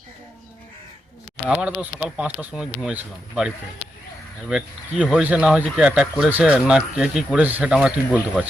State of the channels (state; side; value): normal; both; correlation 0.85